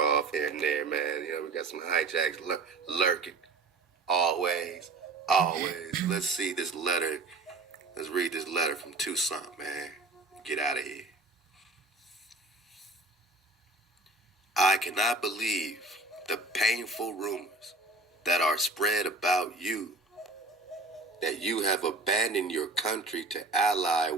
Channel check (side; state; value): left; quieter; 3.2 dB